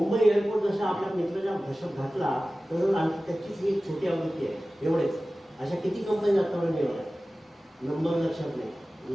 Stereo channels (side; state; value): both; normal; correlation 0.96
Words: एअरपोर्ट जसा आपल्या मित्राच्या घशात घातला तसंच आणखी त्याचीच एक छोटी आवृत्ती आहे. एवढेच. अशा किती कंपनी आतापर्यंत निवडल्या, नंबर लक्षात नाही,